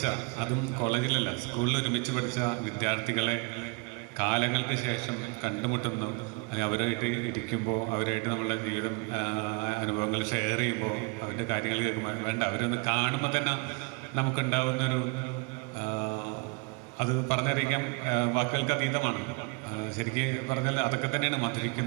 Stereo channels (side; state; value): left; quieter; 31.6 dB